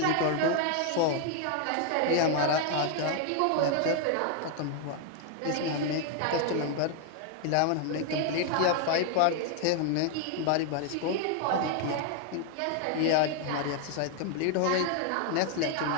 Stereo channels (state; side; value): different; both; correlation 0.00